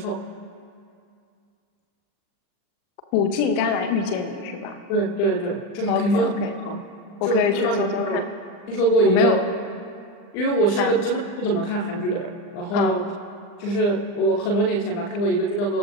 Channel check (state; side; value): late; right; 39 ms